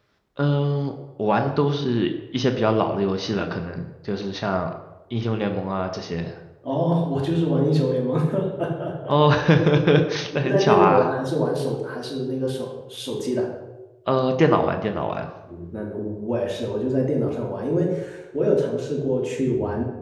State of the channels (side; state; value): both; identical; correlation 1.00